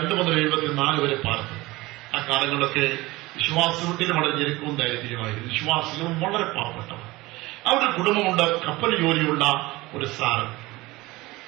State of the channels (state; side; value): quieter; left; 20.5 dB